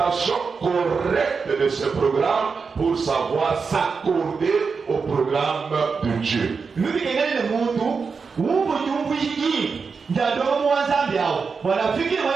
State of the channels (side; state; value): left; quieter; 5.2 dB